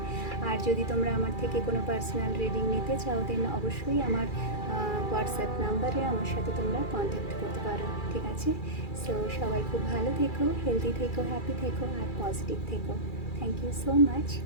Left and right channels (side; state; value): right; late; 2.3 ms